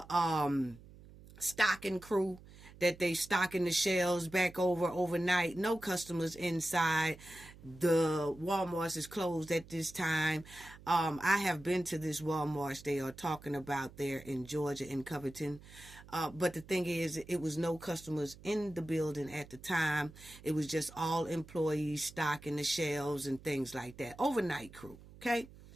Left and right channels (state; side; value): noise; right; hum, 20 dB below the sound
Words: stocking crew that they stocking the shelves back overnight. No customers inside. The Walmarts is closed at this time. I have been to this Walmart they are talking about there in Georgia, in Covington. But the thing is, it was no customers in the building at the time. It was just all employees stocking the shelves and things like that. Overnight crew, okay?